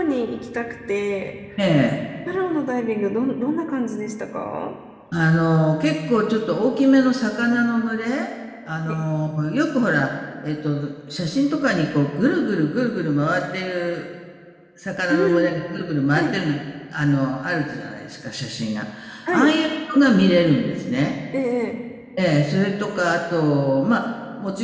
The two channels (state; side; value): identical; both; correlation 1.00